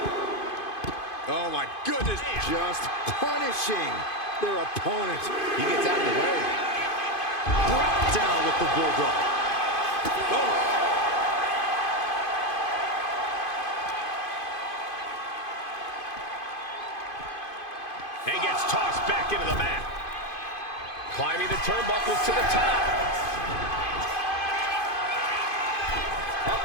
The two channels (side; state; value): right; late; 2.5 ms